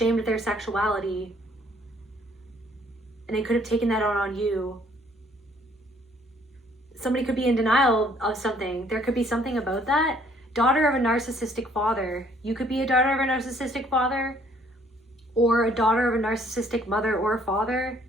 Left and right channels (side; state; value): both; normal; correlation 0.62